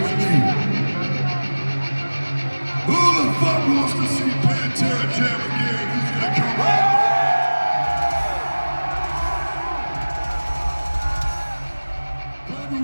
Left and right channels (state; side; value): inverted; both; correlation -1.00